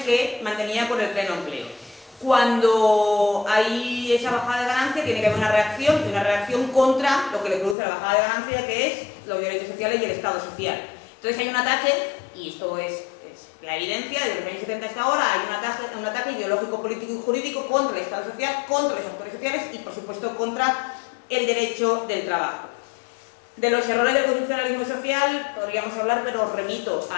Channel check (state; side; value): drops out; right; at 7.8 s